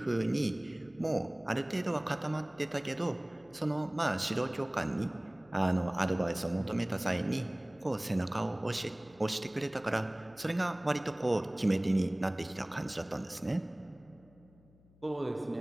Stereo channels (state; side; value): noise; left; hum, 28 dB below the sound